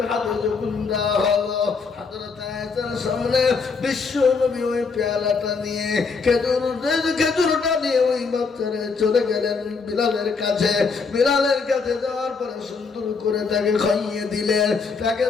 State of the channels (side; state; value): right; quieter; 4.9 dB